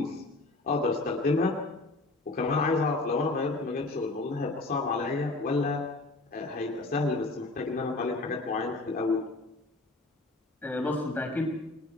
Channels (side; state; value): right; quieter; 3.0 dB